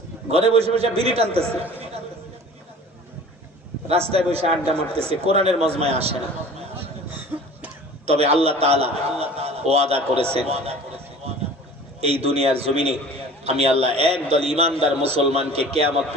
ঘরে বসে বসে বিড়ি টানতেছে, রাস্তায় বসে আড্ডা মারতেছে, কোরআনের মজমায় আসে না। তবে আল্লাহ তাআলা ওয়াদা করেছেন, এই দুনিয়ার জমিনে আমি আল্লাহ একদল ইমানদার মুসলমানকে কিয়ামত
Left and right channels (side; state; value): both; normal; correlation 0.43